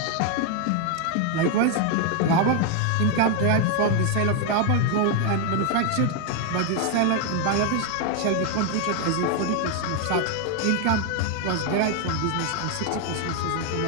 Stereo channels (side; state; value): both; different; correlation 0.01